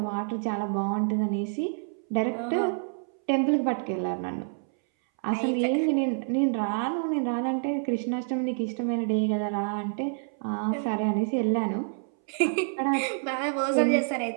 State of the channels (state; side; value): silent; left; 60 dB below the other